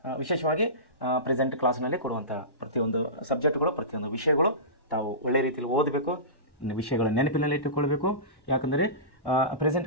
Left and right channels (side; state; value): right; late; 1.1 ms